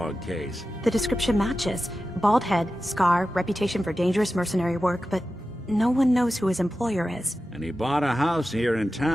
case? The description matches. Bald head, scar, reputation for dangerous mercenary work, but no one knows who his employer is. And he bought a house here in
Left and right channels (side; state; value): both; normal; correlation 0.93